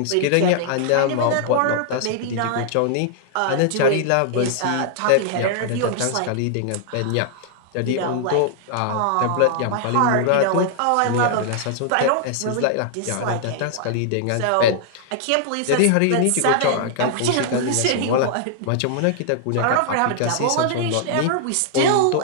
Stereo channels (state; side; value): different; both; correlation -0.01